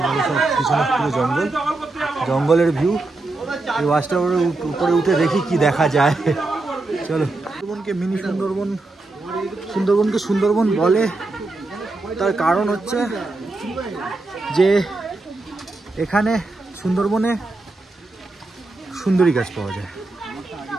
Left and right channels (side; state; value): left; quieter; 3.2 dB